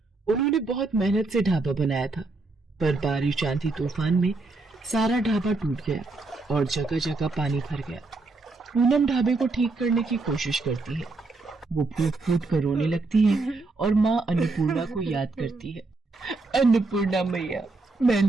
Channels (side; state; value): left; quieter; 3.5 dB